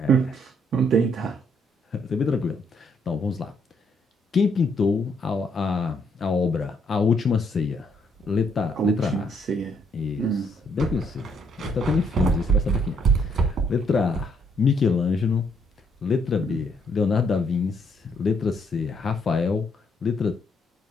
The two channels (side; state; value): both; normal; correlation 0.71